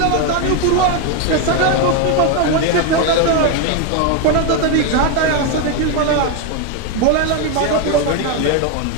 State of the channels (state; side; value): different; both; correlation 0.02